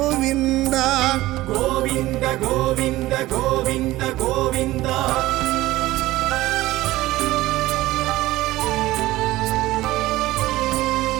ಗೋವಿಂದ ಗೋವಿಂದ ಗೋವಿಂದ ಗೋವಿಂದ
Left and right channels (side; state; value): left; quieter; 17.3 dB